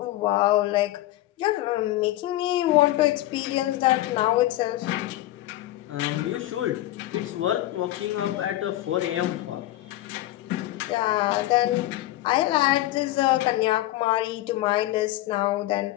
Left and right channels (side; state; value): right; quieter; 15.9 dB